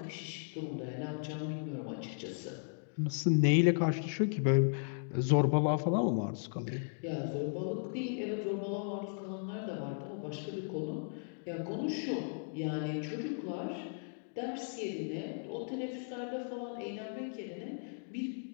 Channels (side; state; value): right; silent; digital silence